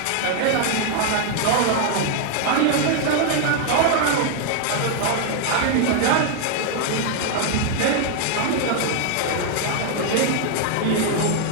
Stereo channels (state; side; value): different; both; correlation 0.00